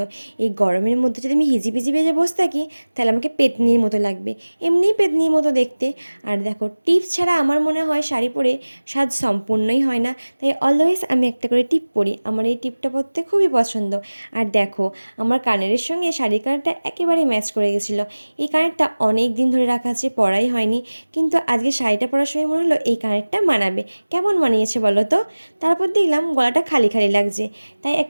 এই গরমের মধ্যে যদি আমি হিজিবিজি বেজে বসে থাকি, তাহলে আমাকে পেতনির মতো লাগবে, এমনিই পেতনির মতো দেখতে। আর দেখো, টিপ ছাড়া আমার মনে হয় শাড়ি পরে সাজ সম্পূর্ণই হয় না। তাই অলওয়েজ আমি একটা করে টিপ পরি, আমার এই টিপটা পরতে খুবই পছন্দ। আর দেখো, আমার কানেরের সঙ্গে শাড়ির কানেরটা একেবারে ম্যাচ করে গেছিলো। এই কানেরটা অনেক দিন ধরে রাখা আছে, পরাই হয়নি, কিন্তু আজকে শাড়িটা পরার সময় মনে হলো এই কানেরটা মানাবে। কেমন মানিয়েছে বলো তো? তারপর দেখলাম গলাটা খালি খালি লাগছে, তাই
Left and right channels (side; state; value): both; inverted; correlation -1.00